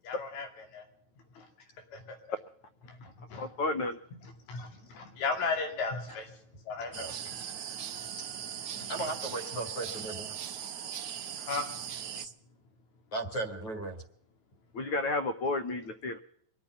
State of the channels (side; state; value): right; late; 9.2 ms